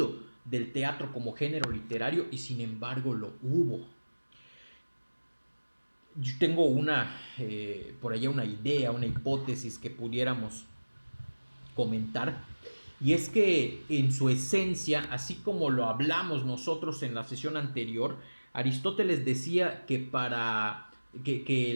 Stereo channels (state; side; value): inverted; both; correlation -1.00